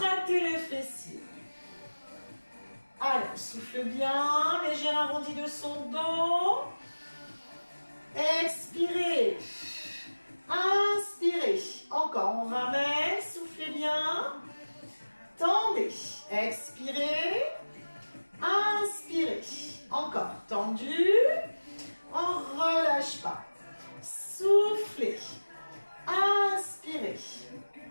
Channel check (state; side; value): inverted; both; correlation -1.00